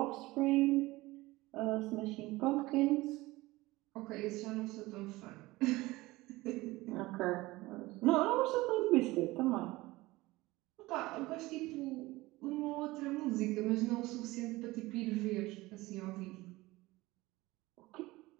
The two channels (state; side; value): quieter; left; 19.9 dB